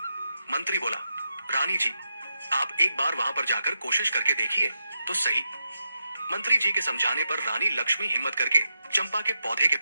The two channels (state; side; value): inverted; both; correlation -0.84